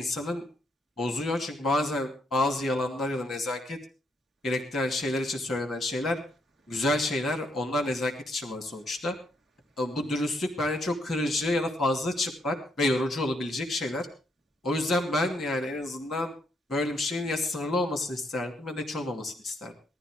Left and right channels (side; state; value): both; normal; correlation 0.75